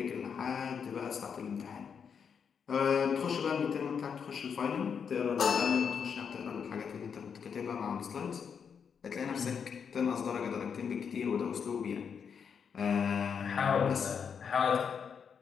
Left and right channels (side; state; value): right; quieter; 6.8 dB